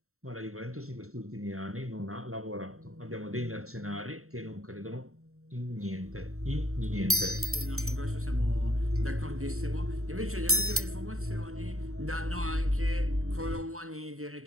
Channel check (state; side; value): late; left; 0.63 ms